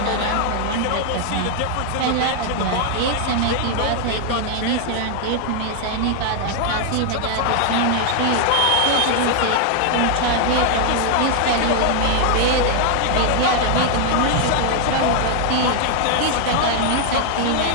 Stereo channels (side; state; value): both; different; correlation 0.00